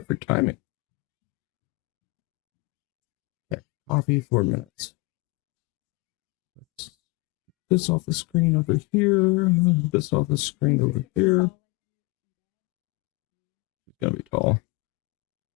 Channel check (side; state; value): right; quieter; 25.6 dB